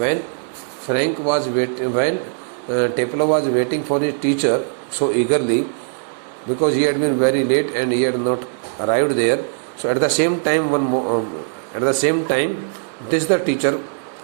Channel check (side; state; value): left; silent; digital silence